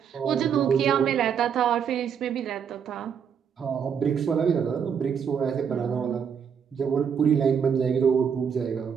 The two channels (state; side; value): quieter; left; 7.3 dB